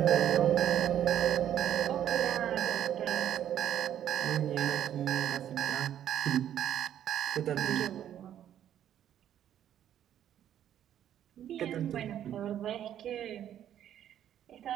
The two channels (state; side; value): quieter; left; 10.6 dB